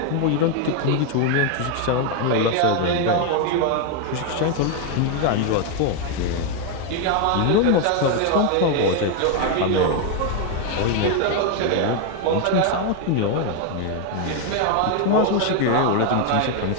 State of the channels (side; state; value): both; different; correlation 0.01